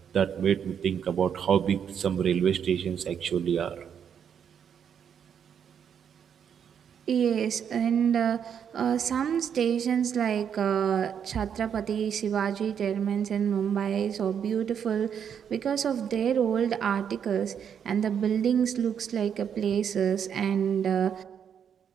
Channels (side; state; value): left; quieter; 8.0 dB